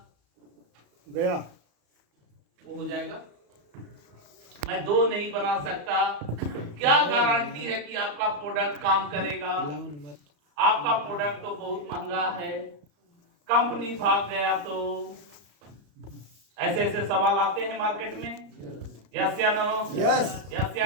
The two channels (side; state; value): left; late; 34 ms